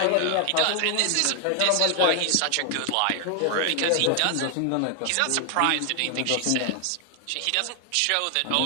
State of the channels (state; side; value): different; both; correlation 0.00